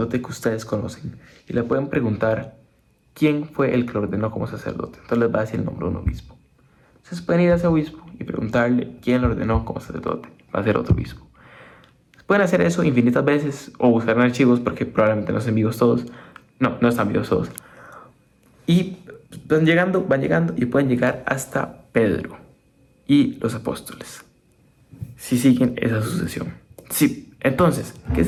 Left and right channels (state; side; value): identical; both; correlation 1.00